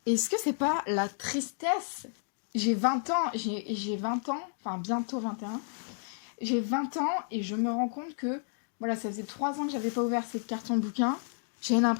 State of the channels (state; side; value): silent; right; digital silence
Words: Est-ce que c'est pas la tristesse? J'ai 20 ans, j'ai 20 ans, enfin bientôt 21. J'ai 20 ans et je me rends compte que, voilà, ça faisait 3 ans que j'avais pas ouvert ces cartons bouquins. J'ai